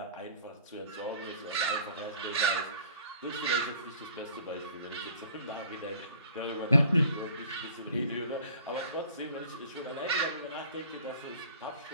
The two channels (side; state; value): both; inverted; correlation -0.50